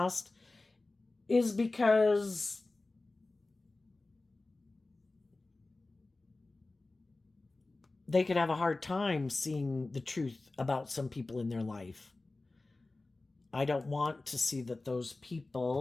is because they could have a hard time seeing the truth about some people in their life. I don't want to see that those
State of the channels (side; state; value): right; quieter; 3.2 dB